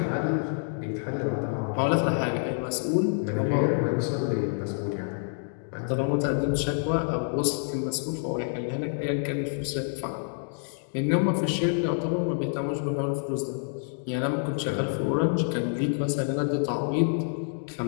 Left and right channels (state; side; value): silent; right; digital silence